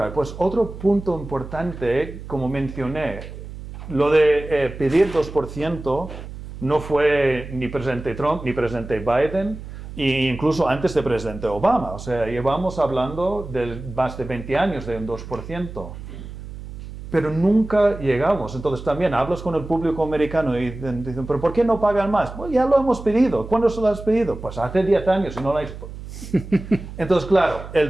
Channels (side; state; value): right; noise; hum, 12 dB below the sound